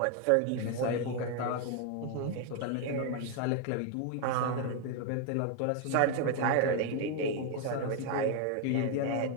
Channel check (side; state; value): both; different; correlation 0.01